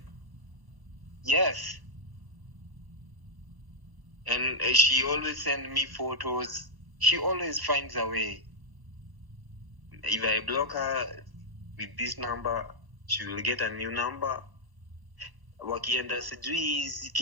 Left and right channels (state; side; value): late; left; 1.0 ms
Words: Yes. And she always sends me photos. She always finds a way. If I block her with this number, she will get a new number. Wakienda sijui